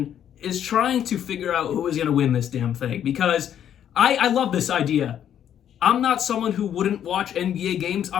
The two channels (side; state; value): right; quieter; 9.8 dB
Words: is trying to figure out who is going to win this damn thing, because I love this idea. I'm not someone who wouldn't watch NBA games.